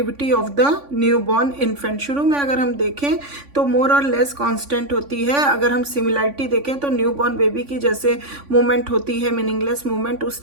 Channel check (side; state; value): left; late; 3.5 ms